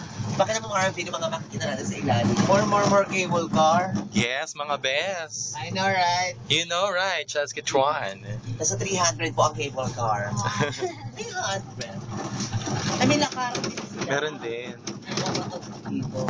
Bakit naman mga video mga makikita natin sa ilalim? More cable car. Yes, mga best. I know, right? You know, right? Just get one. Nasa 300 po ang cable car. 300. I mean, lakaran din sila. Meron din.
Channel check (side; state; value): both; identical; correlation 1.00